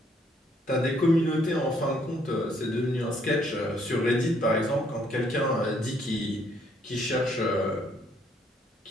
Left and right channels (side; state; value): both; normal; correlation 0.68